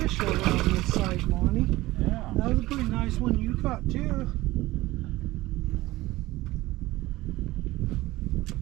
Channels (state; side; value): quieter; left; 18.4 dB